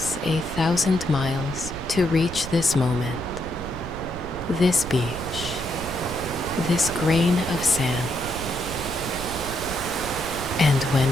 1,000 miles to reach this moment, this beach, this grain of sand. And when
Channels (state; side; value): noise; right; rumble, 11 dB below the sound